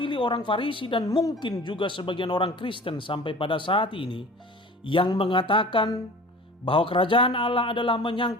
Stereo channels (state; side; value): normal; both; correlation 0.41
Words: orang Farisi dan mungkin juga sebagian orang Kristen sampai pada saat ini, yang mengatakan bahwa kerajaan Allah adalah